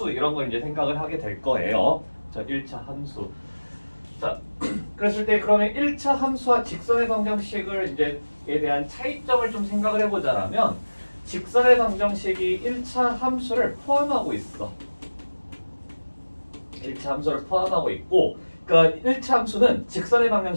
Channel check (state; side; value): inverted; both; correlation -1.00